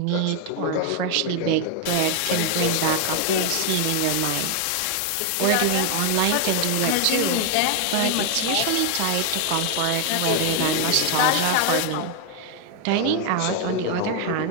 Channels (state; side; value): different; both; correlation 0.00